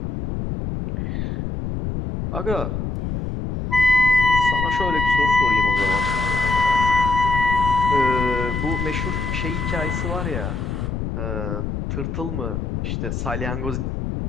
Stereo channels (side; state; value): left; noise; rumble, 3 dB below the sound